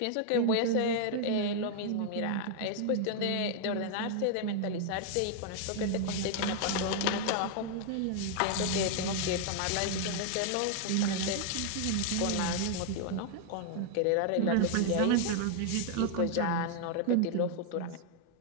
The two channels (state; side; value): different; both; correlation 0.00